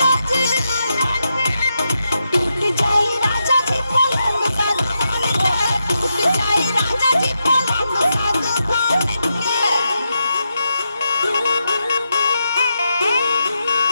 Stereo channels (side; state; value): both; inverted; correlation -0.85